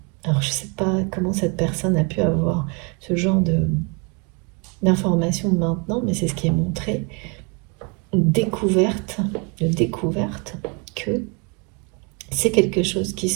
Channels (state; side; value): quieter; left; 33.1 dB